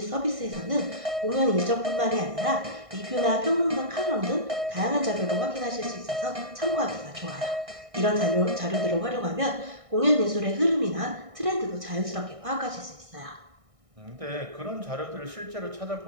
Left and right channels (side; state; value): left; late; 1.6 ms